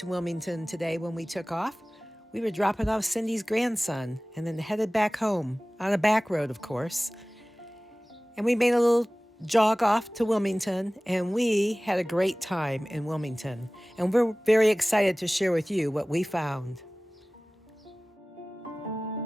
Wilmington today when we took off. We were dropping off Cindy's grandson and then headed back home on a back road, of course. And we made a little jog off to Wilmington, and we had a great time in Wilmington. And we're very excited to share with you what we found.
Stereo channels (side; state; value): both; normal; correlation 0.98